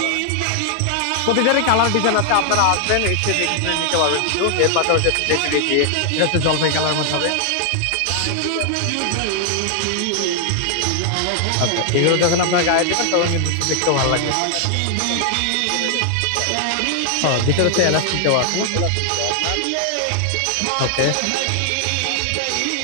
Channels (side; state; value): both; different; correlation 0.00